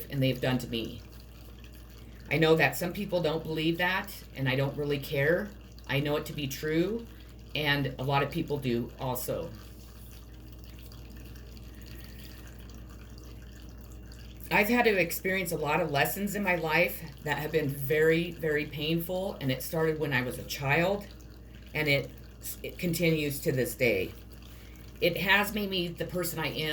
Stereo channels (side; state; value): both; identical; correlation 1.00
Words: and they've done to me. I know that some people don't believe that, and I don't really care. I know it to be true, and a lot of people do also. I've had to experience a lot of lessons in my life that have been very, very painful, and it started when I was a child, and it continues to this day. It has made me the person I